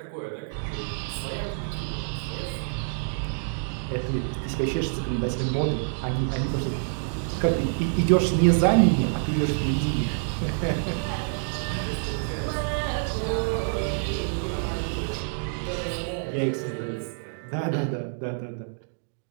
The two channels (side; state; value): left; silent; digital silence